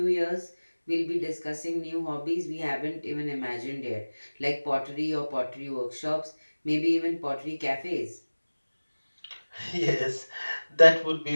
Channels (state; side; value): inverted; both; correlation -1.00